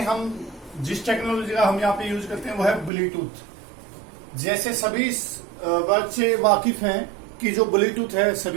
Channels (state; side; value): drops out; left; at 2.9 s